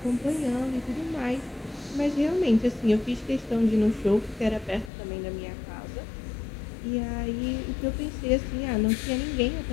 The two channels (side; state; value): right; drops out; at 4.9 s